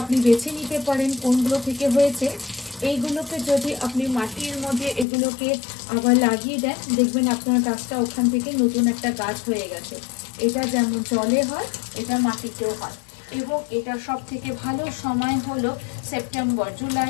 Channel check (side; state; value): right; drops out; at 5.1 s